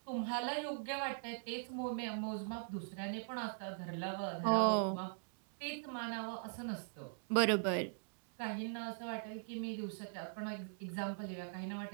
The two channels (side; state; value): left; silent; digital silence